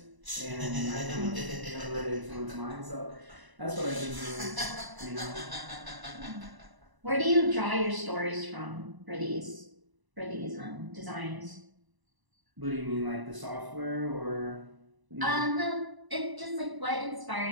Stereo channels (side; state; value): left; late; 1.0 ms